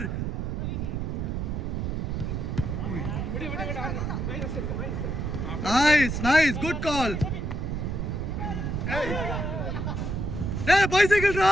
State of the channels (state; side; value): noise; right; rumble, 2 dB below the sound